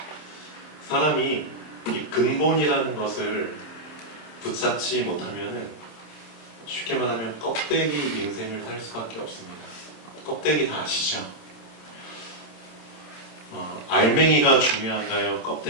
사람이 이 근본이라는 것을 붙잡지 못하면은 쉽게 말하면 껍데기 인생을 살 수밖에 없습니다. 껍데기 다 아시죠? 알맹이가 중요한가요?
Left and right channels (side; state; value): right; late; 27 ms